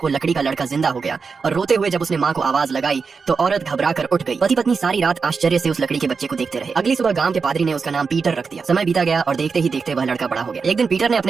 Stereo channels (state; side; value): quieter; left; 5.1 dB